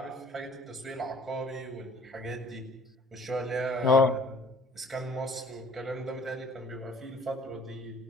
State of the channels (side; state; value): both; normal; correlation 0.52